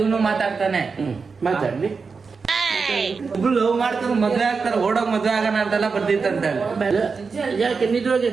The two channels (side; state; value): left; quieter; 4.9 dB